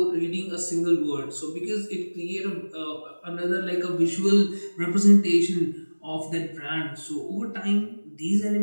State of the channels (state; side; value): inverted; both; correlation -1.00